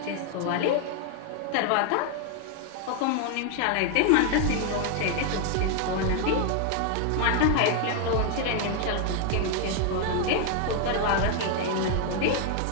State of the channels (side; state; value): both; different; correlation 0.00